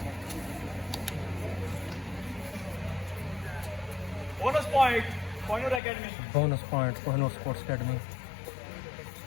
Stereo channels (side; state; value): right; drops out; at 5.8 s